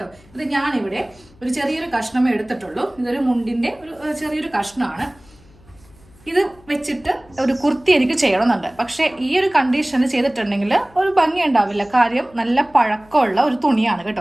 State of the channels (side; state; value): left; noise; hum, 27 dB below the sound